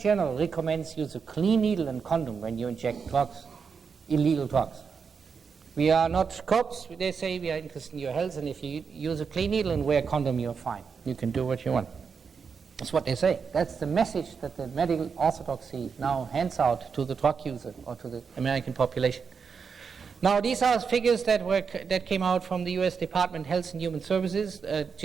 recommends use a clean needle and condom when you inject drugs, illegal drugs. We are not cops. They say we are interested in your health, and if you use a clean needle and wear a condom, you're fine. You can do what you want. That's what they say. That's the message that the medical orthodoxy now hands out to the drug user or to the American population. Now, these are figures that came out from the U.S. Department of Health and Human Services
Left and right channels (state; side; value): quieter; left; 5.9 dB